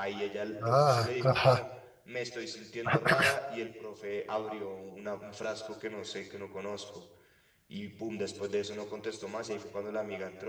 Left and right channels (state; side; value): identical; both; correlation 1.00